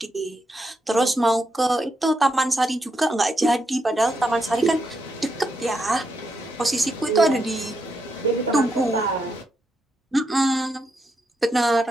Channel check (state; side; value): normal; both; correlation 0.82